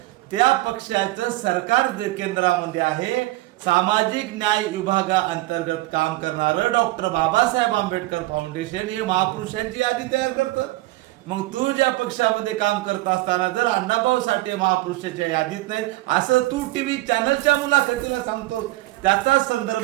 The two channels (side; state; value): left; quieter; 19.1 dB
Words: त्या पक्षाचं सरकार केंद्रामध्ये आहे, सामाजिक न्याय विभागाअंतर्गत काम करणारं डॉक्टर बाबासाहेब आंबेडकर फाउंडेशन हे महापुरुषांची यादी तयार करतं। मग तू ज्या पक्षामध्ये काम करत असताना जर अण्णाभाऊ साठे महापुरुषाच्या यादीत नाही असं तू टीव्ही चॅनलच्या मुलाखतीला सांगतो, त्याचा